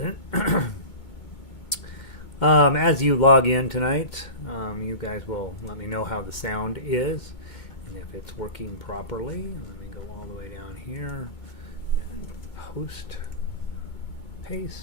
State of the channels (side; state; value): right; late; 2.2 ms